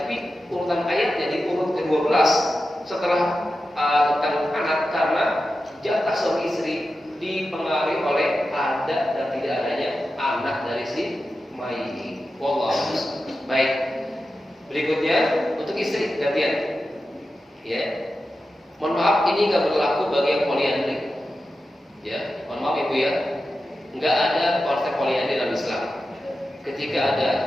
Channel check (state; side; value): normal; both; correlation 0.92